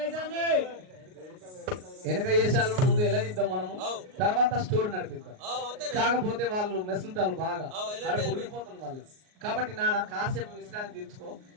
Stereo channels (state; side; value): late; left; 38 ms